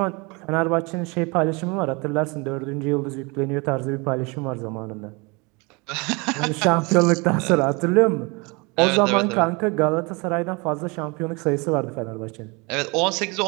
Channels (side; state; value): left; quieter; 28.2 dB